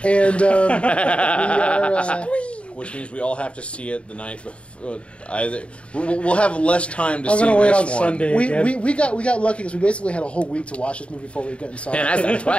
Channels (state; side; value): late; right; 0.060 ms